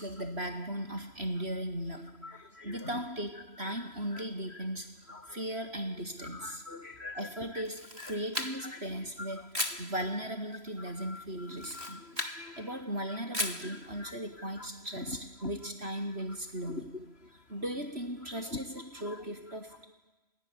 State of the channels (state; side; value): late; left; 3.0 ms